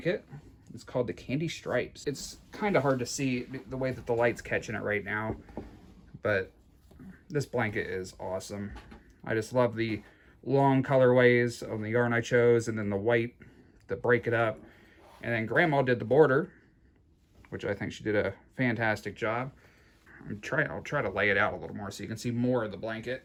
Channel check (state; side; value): identical; both; correlation 1.00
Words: It's called the Candy Stripes. It's kind of hard to see the way that the light's catching it right now, but this blanket is awesome. I just love the long colorways of the yarn I chose, and then the white to break it up. And then Grandma did the border, which I think she did a fantastic job. I'll try to lay it out a little more so you can see more of the blanket.